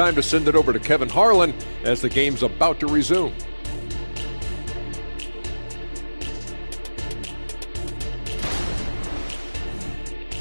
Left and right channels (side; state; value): both; inverted; correlation -1.00